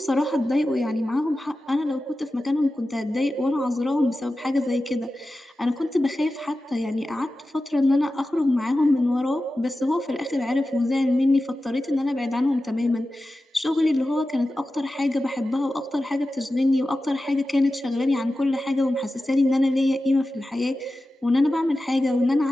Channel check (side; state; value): both; normal; correlation 0.94